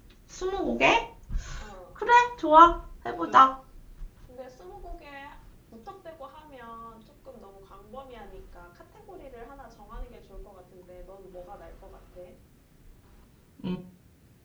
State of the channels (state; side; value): identical; both; correlation 1.00